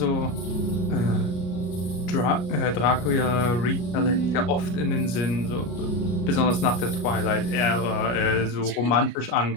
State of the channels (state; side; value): late; right; 33 ms